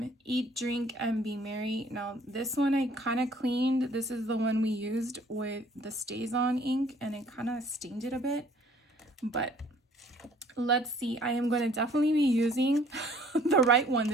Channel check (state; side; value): normal; both; correlation 0.57